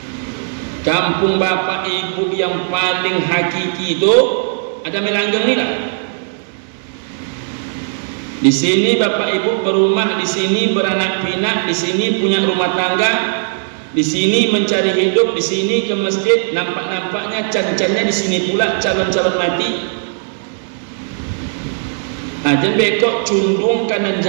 Kampung bapak ibu yang paling hakiki itu ada Damai Langgeng ni lah. Di sini bapak ibu berumah, di sini beranak pinak, di sini punya rumah tangga, di sini mencari hidup, di sini ke masjid, nampak-nampaknya can-cannya di sini pula calon-calon mati. Jangan bekok cundung kanan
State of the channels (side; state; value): left; silent; digital silence